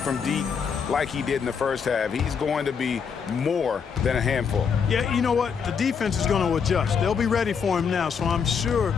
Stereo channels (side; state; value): right; quieter; 6.5 dB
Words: deep like he did in the first half, he's going to be more than a handful. Yeah, you know what? The defense is going to adjust. They'll be ready for him now, so I'm sure